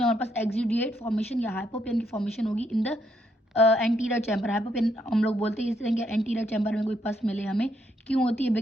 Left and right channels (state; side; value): normal; both; correlation 0.75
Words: हमारे पास एक्सुडिएट फॉर्मेशन या हाइपोपियन की फॉर्मेशन होगी इन द एंटीरियर चैम्बर। हाइपोपियन हम लोग बोलते हैं इस तरह के एंटीरियर चैम्बर में कोई पस मिले हमें, क्यों होती है,